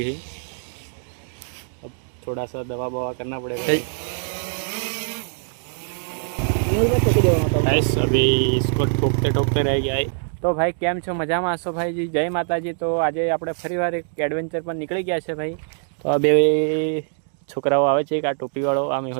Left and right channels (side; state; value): left; silent; digital silence